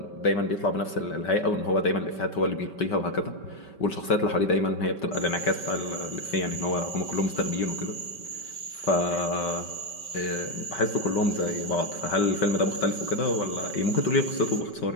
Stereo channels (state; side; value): late; right; 5.2 ms